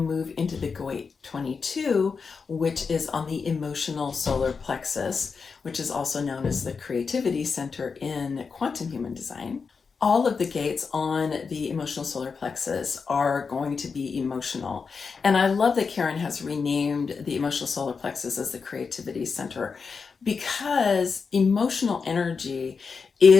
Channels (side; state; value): right; quieter; 5.3 dB